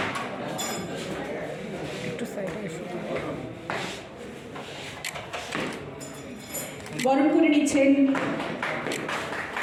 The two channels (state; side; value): identical; both; correlation 1.00